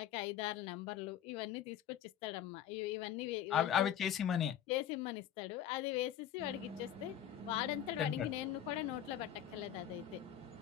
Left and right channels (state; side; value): quieter; right; 10.3 dB